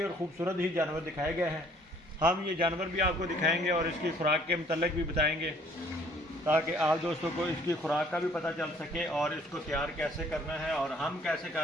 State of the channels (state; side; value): normal; both; correlation 0.59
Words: और ख़ूबसूरत ही जानवर दिखाए गए हैं। हम ये जानवर भी आपको दिखाएंगे और इसकी खुराक के मतलब भी बताएंगे ताकि आप दोस्तों को इसकी खुराक का भी पता चल सके और इसको तैयार कैसे करना है और हम कैसे